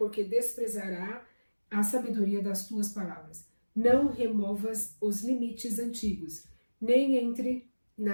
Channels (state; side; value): inverted; both; correlation -1.00